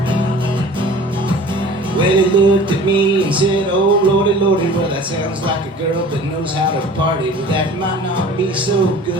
Well, he looked at me and said, oh lordy, lordy, well that sounds like a girl that knows how to party, but that might not be so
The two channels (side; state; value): both; normal; correlation 0.43